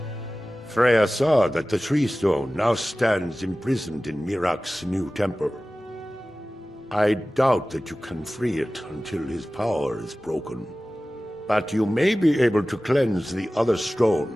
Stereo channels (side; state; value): both; normal; correlation 0.96